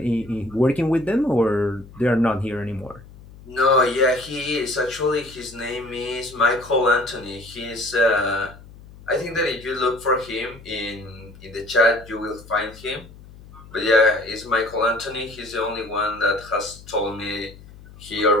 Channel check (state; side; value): noise; left; hum, 20 dB below the sound